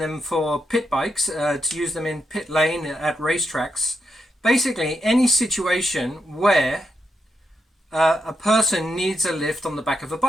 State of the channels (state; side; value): normal; both; correlation 0.83